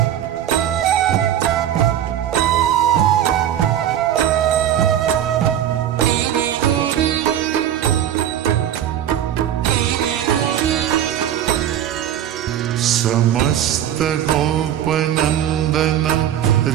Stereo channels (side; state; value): left; quieter; 10.7 dB